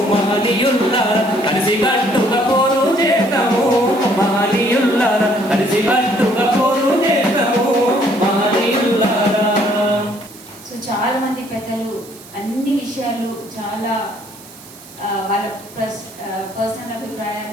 మహనీయుల్లా కలిసి కట్టుగా పోరు చేస్తాము మహనీయుల్లా కలిసి కట్టుగా పోరు చేస్తాము మహనీయుల్లా. సో చాలా మంది పెద్దలు అన్ని విషయాలు చాలా వాళ్ళ పర్సనల్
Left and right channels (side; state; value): right; noise; hiss, 20 dB below the sound